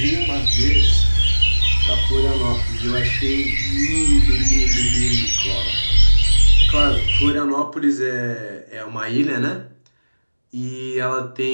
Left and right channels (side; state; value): both; inverted; correlation -1.00